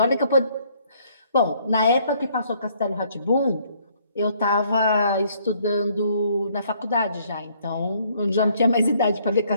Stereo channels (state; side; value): inverted; both; correlation -0.65